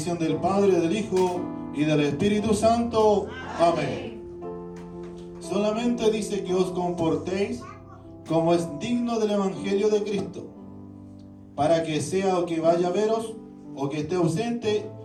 del Padre, del Hijo y del Espíritu Santo. Amén. Solamente dice que os comportéis como es digno del Evangelio de Cristo, para que sea o que vaya a veros o que esté ausente,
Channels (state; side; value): identical; both; correlation 1.00